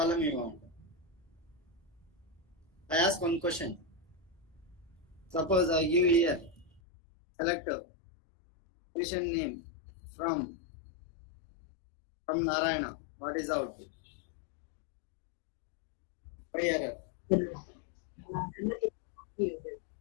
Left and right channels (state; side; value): drops out; right; at 6.8 s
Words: you want. I ask one question. Suppose I give here select patient name from Narayana. What is the output? By error. There